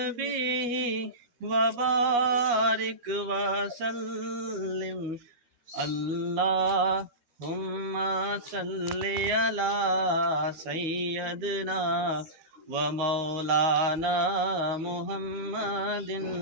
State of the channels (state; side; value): late; left; 12 ms